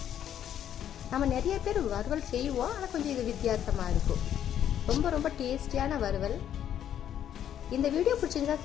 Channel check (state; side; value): quieter; right; 10.1 dB